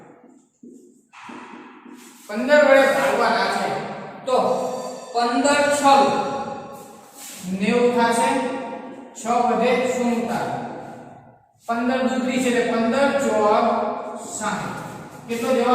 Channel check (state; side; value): identical; both; correlation 1.00